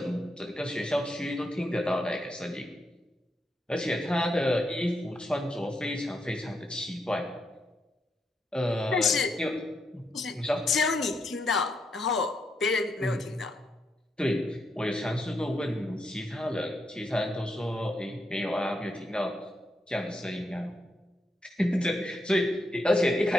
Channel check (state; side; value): normal; both; correlation 0.81